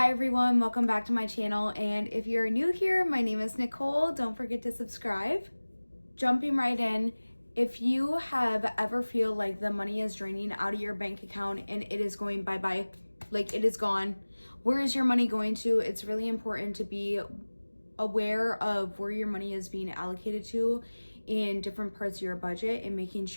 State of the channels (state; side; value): inverted; both; correlation -1.00